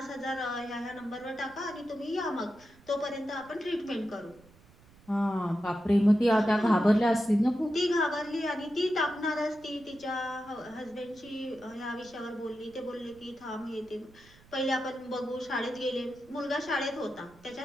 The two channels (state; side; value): noise; right; rumble, 26 dB below the sound